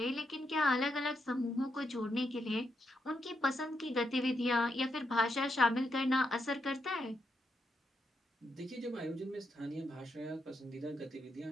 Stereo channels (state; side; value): normal; both; correlation 0.81